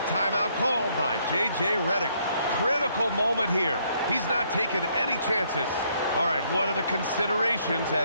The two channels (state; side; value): inverted; both; correlation -0.69